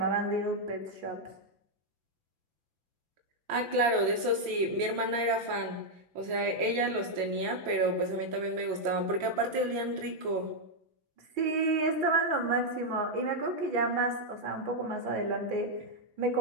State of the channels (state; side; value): late; left; 5.9 ms